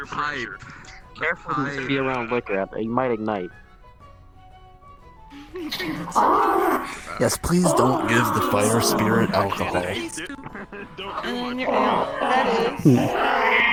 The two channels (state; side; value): identical; both; correlation 1.00